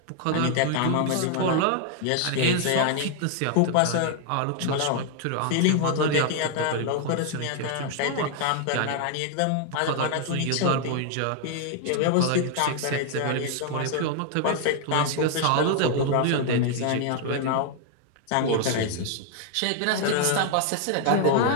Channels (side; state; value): both; different; correlation 0.00